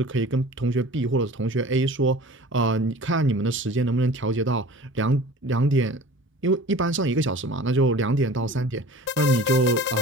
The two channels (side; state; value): both; normal; correlation 0.42